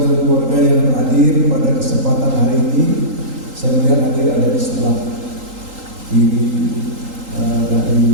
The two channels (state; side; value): late; left; 3.8 ms